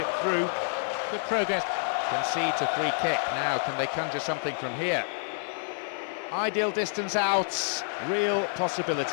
through. Good progress. Concedes a free kick. Now, can they conjure something from here? Ideal distance out. Real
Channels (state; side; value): silent; right; digital silence